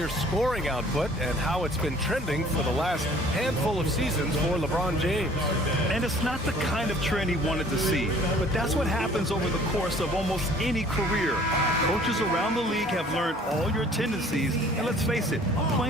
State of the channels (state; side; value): normal; both; correlation 0.53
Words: scoring output and how it's been trending for the last handful of seasons for LeBron James. And it's not the kind of trend he wanted to see, but that's what happens over the course of almost any career. Coaches around the league have learned all your tendencies, and let's face it,